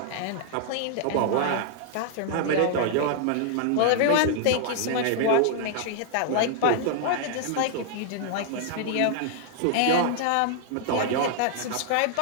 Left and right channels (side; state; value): both; different; correlation -0.01